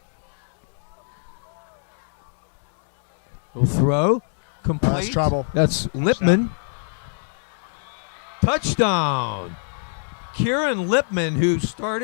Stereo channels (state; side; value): silent; right; digital silence